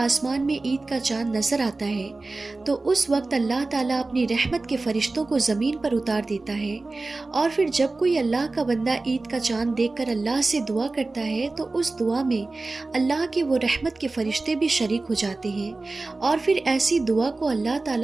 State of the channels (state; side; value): quieter; left; 3.3 dB